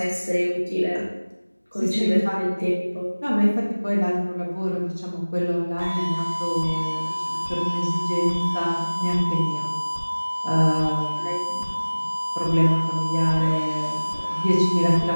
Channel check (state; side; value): inverted; both; correlation -1.00